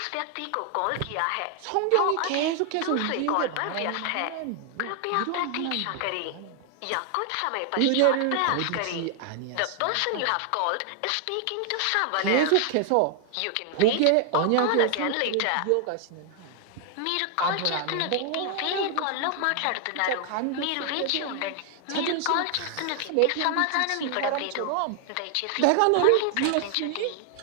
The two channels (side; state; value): both; different; correlation 0.00